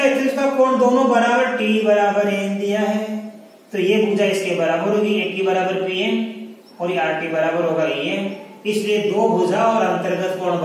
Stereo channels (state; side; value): identical; both; correlation 1.00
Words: का कोण दोनों बराबर T बराबर N दिया है, तो ये भुजा इसके बराबर होगी, AT बराबर PN और ये RT बराबर होगा EN, इसलिए दो भुजा और अंतर्गत कोण